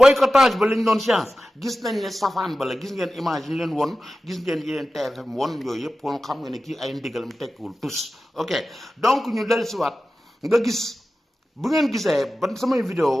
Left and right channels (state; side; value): normal; both; correlation 0.94